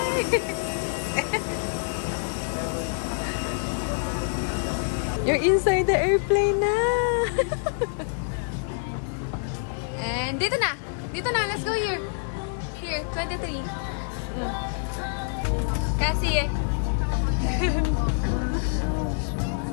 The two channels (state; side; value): silent; right; digital silence